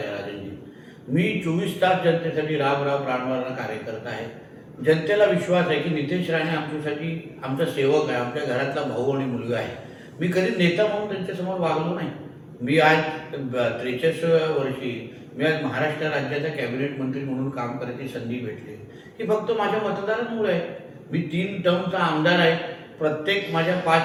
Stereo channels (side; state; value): both; identical; correlation 1.00